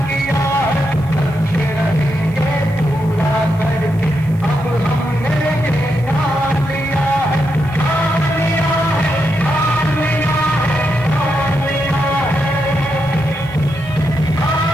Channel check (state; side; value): noise; right; hiss, 28 dB below the sound